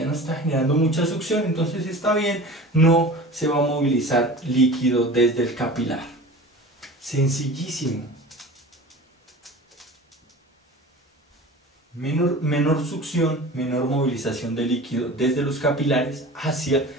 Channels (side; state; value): both; normal; correlation 0.37